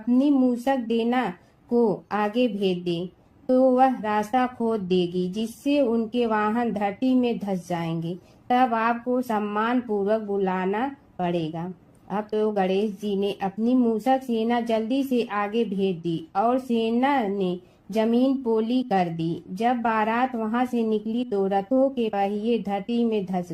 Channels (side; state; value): both; identical; correlation 1.00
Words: मूसक देना को आगे भेज दे तो वह रास्ता खोद देगी, जिससे उनके वाहन धरती में धंस जाएंगे। तब आपको सम्मान पूर्वक बुलाना पड़ेगा। अब तो गणेश जी ने अपनी मूसक सेना जल्दी से आगे भेज दी और सेना ने जमीन पोली कर दी। जब बारात वहां से निकली तो रथों के पहिए धरती में धंस